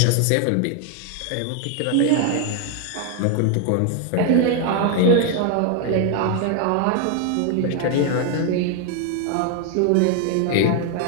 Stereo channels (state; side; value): different; both; correlation 0.01